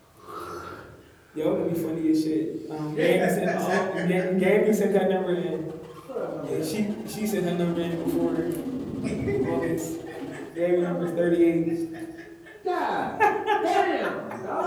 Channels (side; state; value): both; identical; correlation 1.00